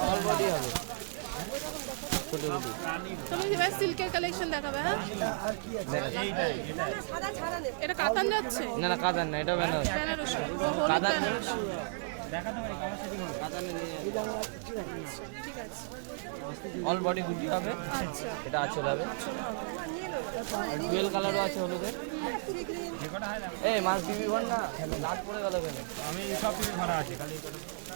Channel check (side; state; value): left; silent; 55 dB below the other